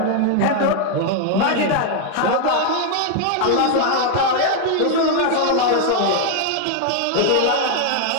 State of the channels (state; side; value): different; both; correlation 0.00